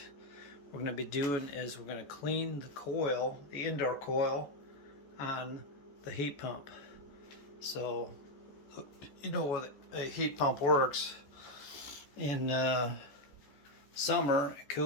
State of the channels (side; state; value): right; late; 14 ms